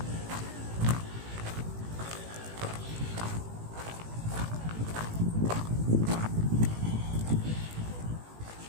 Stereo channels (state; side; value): late; left; 18 ms